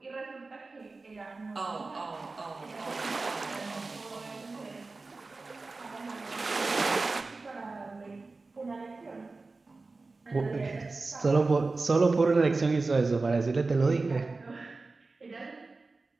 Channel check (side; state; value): left; quieter; 3.6 dB